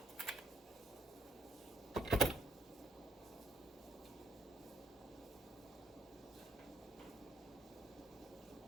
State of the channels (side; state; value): both; normal; correlation 0.75